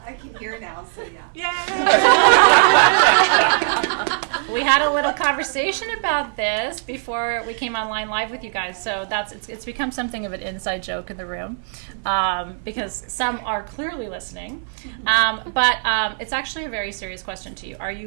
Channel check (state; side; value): silent; left; 57 dB below the other